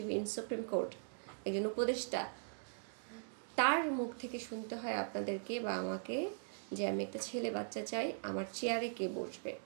ইন সুপ্রিম কোর্ট, একজন উপদেষ্টা, তার মুখ থেকে শুনতে হয় আপনাদেরকে বা আমাকে যে আমি একটা ছেলে বাচ্চা চাই, আমার চেয়ারে কে বসবে,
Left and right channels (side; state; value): left; silent; digital silence